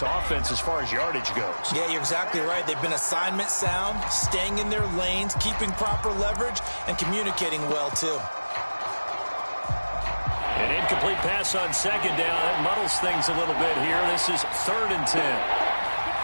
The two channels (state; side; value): inverted; both; correlation -1.00